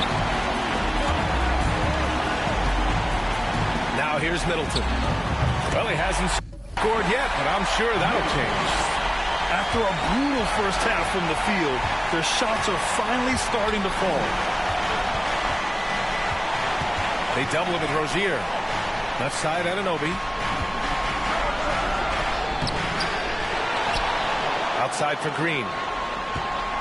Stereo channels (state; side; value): identical; both; correlation 1.00